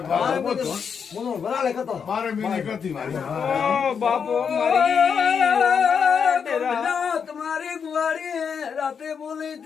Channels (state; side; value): quieter; right; 6.6 dB